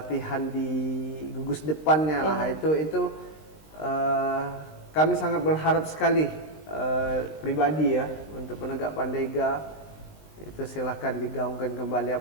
di gugus depannya lah. Itu kami sangat berharap sekali pribadi ya untuk penegak pandega itu silahkan digaungkan kembali.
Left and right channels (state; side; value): late; right; 19 ms